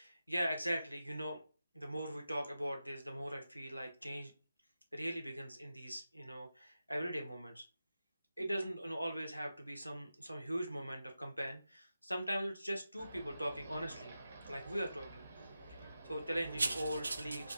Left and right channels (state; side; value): inverted; both; correlation -0.91